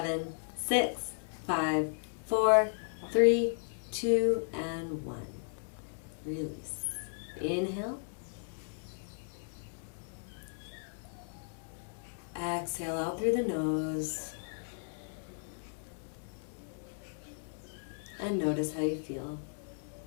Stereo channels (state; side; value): silent; right; digital silence